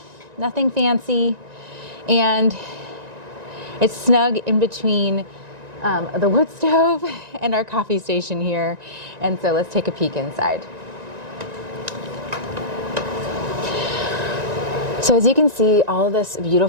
nothing fancy, and it's snug in between the wood stove and our coffee station here. And so let's take a peek inside. So as you can see, all of this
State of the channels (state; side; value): late; left; 1.9 ms